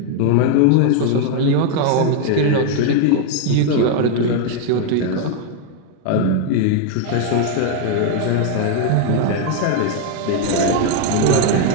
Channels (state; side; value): different; both; correlation 0.01